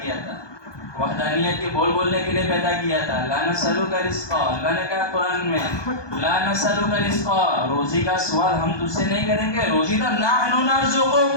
کیا تھا، وحدانیت کے بولنے کے لیے پیدا کیا تھا. لا نسألک رزقا، اللہ نے کہا قرآن میں لا نسألک رزقا، روزی کا سوال ہم تجھ سے نہیں کریں گے. روزی تو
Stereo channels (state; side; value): late; right; 1.2 ms